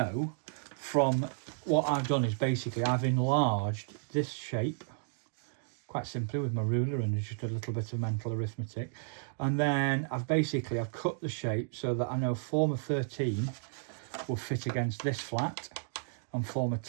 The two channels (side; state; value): left; silent; digital silence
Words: from what I've done is basically I've enlarged this shape quite simply with my ruler and just a little bit of mental arithmetic, and then I've cut the shape so that I know former 13 will fit against this flat and former